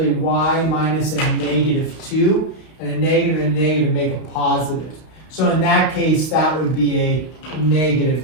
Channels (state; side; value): late; right; 32 ms